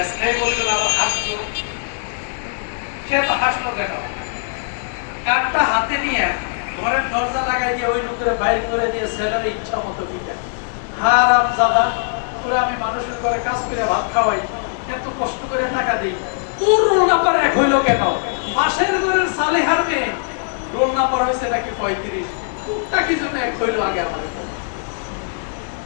বলল, আবার হাসলো। সে তো হাসলো কেন? কার্ডটা হাতে নিয়ে ঘরের দরজা লাগাই দিয়ে ওই লোকের বাইরে করে দিয়ে ছেলের ইচ্ছা মতো দিতে। হারাম দাদা, তোরা আমি মানুষের ঘরে কাজ করে ভাত খাওয়াই, এত কষ্ট করে টাকা দিই, তোর রোল নাম্বার 1 হইল কেন? মাসের ঘরের সালেহার মেয়ে রোল নাম্বার হয়েছে নাকি 35, তোরটা কি জন্য 1 হইল আগে?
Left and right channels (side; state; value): right; silent; digital silence